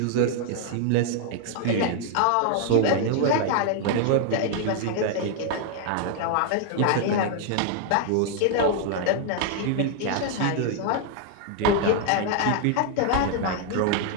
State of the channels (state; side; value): different; both; correlation 0.00